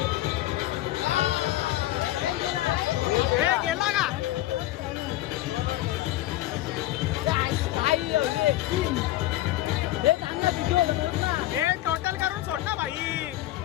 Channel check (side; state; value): right; quieter; 15.6 dB